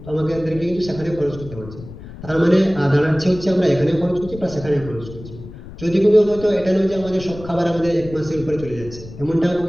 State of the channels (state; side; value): noise; left; rumble, 15 dB below the sound